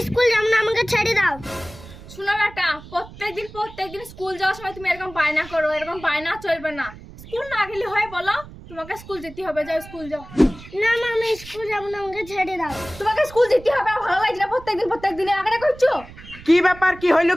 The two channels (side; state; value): right; noise; rumble, 17 dB below the sound